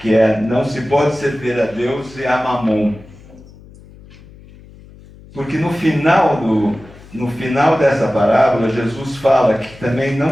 é: não se pode servir a Deus e a Mamon. Porque no final dessa parábola, Jesus fala que também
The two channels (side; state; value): left; noise; hum, 22 dB below the sound